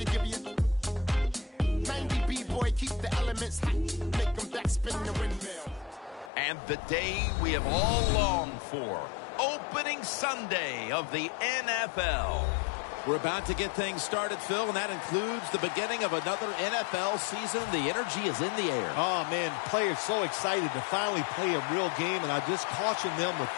give you 90 B-boy, keep the elements hot. Make them backspin the windmill. And the day we have all longed for, opening Sunday of the NFL. We're about to get things started, Phil, and that includes the beginning of another NFL season. The energy is in the air. Oh, man, players so excited to finally play a real game, and I just caution them with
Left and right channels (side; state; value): right; drops out; at 6.3 s